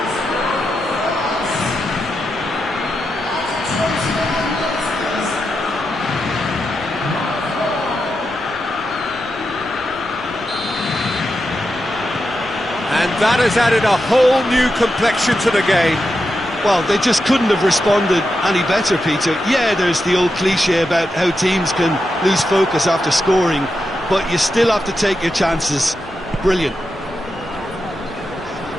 And that has added a whole new complexion to the game. Well, they just couldn't have responded any better, Peter. Yeah, there's the old cliche about how teams can lose focus after scoring, but you still have to take your chances. Brilliant.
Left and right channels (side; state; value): left; noise; rumble, 23 dB below the sound